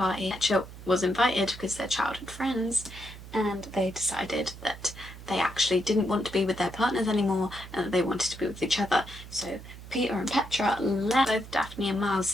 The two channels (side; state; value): right; noise; hum, 15 dB below the sound